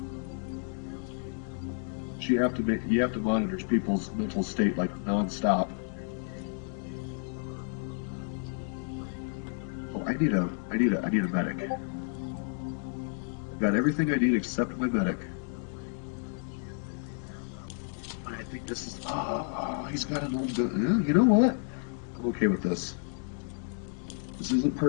You have to monitor people's mental state like nonstop. Oh, I need a medic. I've got everything I need except my medic. I think this is. Oh, he's got an old gun. You know what? I'm okay with this. This isn't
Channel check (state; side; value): silent; right; 57 dB below the other